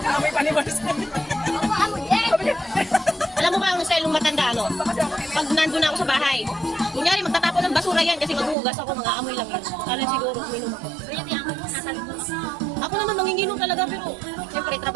May panibars. Alam mo ba ang style ng matanda, ano? Pag nandun ako sa bahay, kunyari magtatapon ng basura yan kasi maghuhugas ako, mga amoy lang yun. Alam siguro, uminom ako. Ako naman manginginom talaga, pero siyempre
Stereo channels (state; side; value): drops out; left; at 8.6 s